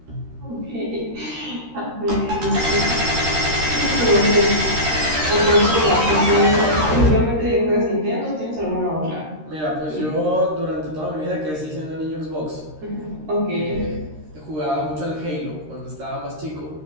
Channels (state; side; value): late; left; 13 ms